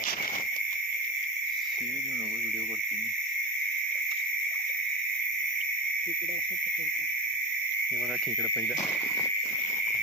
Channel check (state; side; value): normal; both; correlation 0.30